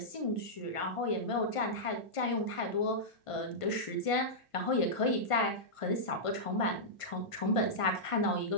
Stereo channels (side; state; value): right; late; 1.5 ms